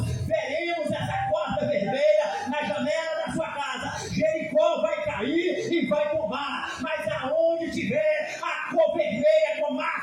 na janela da sua casa. Jericó vai cair e vai tombar, mas aonde tiver a cor vermelha com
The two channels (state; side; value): identical; both; correlation 1.00